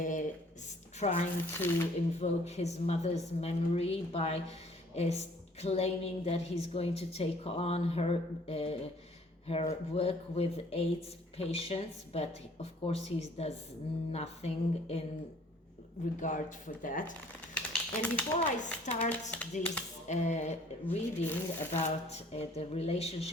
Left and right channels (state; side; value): normal; both; correlation 0.56